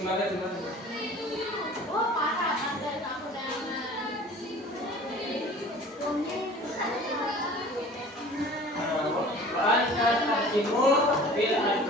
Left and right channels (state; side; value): normal; both; correlation 0.45